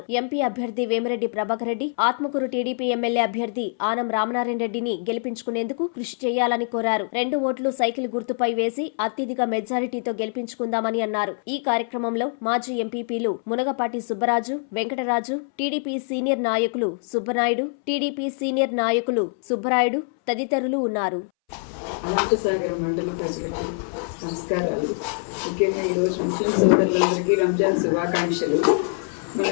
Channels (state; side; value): silent; right; 62 dB below the other